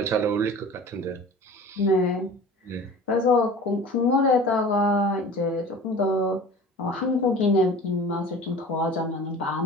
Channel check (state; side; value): normal; both; correlation 0.40